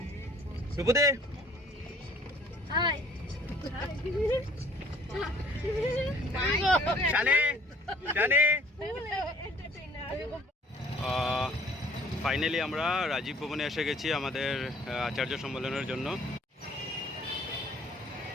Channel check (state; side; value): normal; both; correlation 0.56